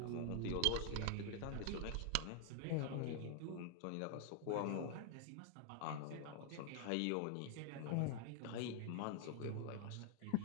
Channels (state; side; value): different; both; correlation 0.00